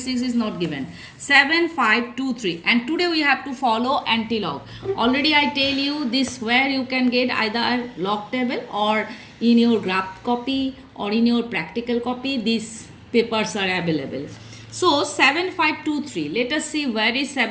is not given. 7523, and today we have to follow anti-log. Already I tell you this, where you can get either log table or in your graph copy or in your practical copy, these papers are available. So 7523, let us see where is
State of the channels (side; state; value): both; identical; correlation 1.00